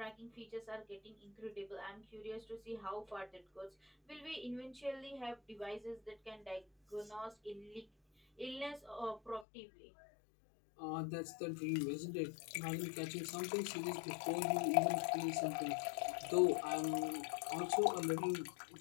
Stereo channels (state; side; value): drops out; right; at 9.5 s